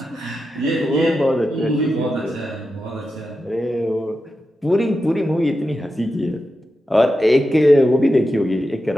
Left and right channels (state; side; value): normal; both; correlation 0.89